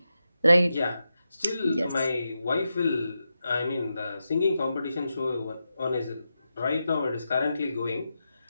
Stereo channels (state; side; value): inverted; both; correlation -0.89